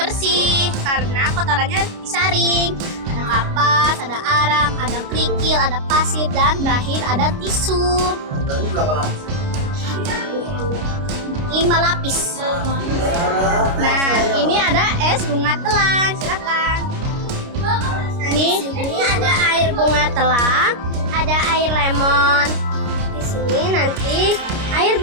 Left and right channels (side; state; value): left; late; 29 ms